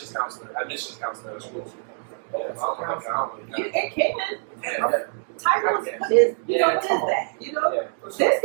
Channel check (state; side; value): silent; left; digital silence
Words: counselor at a school. Yeah, It can. Yeah. Titles, Okay. what is Yeah, what is come on. that? Yeah. This